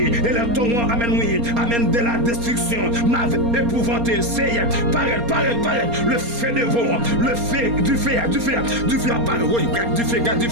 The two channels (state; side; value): late; left; 4.3 ms